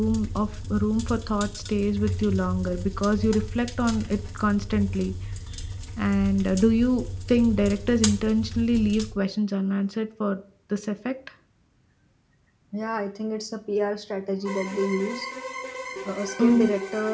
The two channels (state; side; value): identical; both; correlation 1.00